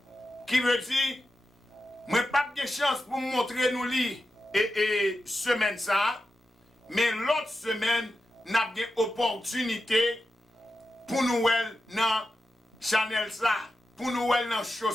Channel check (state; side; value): normal; both; correlation 0.90